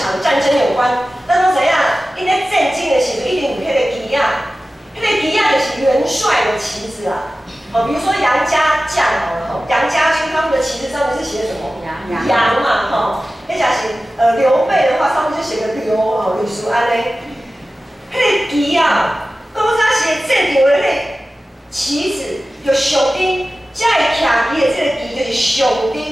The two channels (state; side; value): normal; both; correlation 0.95